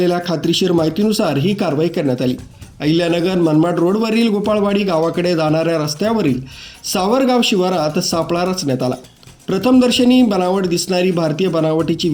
खात्रीशीर माहितीनुसार ही कारवाई करण्यात आली। अहिल्यानगर मनमाड रोडवरील गोपाळवाडी गावाकडे जाणाऱ्या रस्त्यावरील सावरगाव शिवारात सापळा रचण्यात आला। प्रथमदर्शनी बनावट दिसणारी भारतीय बनावटीची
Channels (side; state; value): both; identical; correlation 1.00